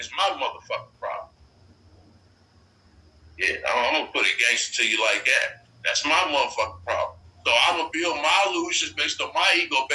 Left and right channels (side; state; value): both; identical; correlation 1.00